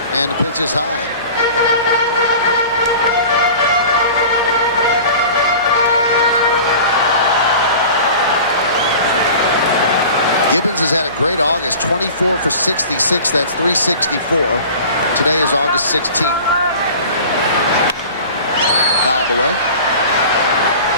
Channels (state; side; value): inverted; both; correlation -0.39